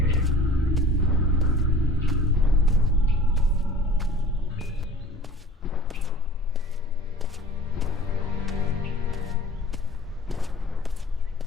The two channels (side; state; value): both; normal; correlation 0.47